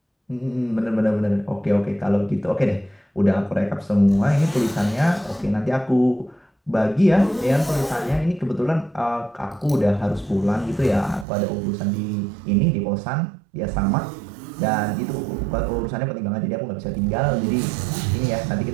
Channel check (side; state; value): left; drops out; at 11.2 s